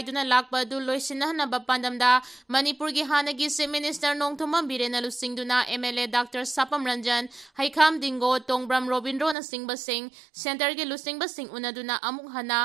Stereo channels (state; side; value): drops out; left; at 9.3 s